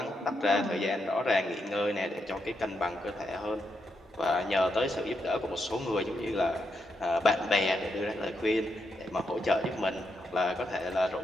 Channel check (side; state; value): both; normal; correlation 0.82